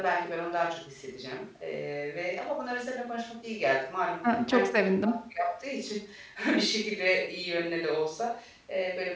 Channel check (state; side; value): identical; both; correlation 1.00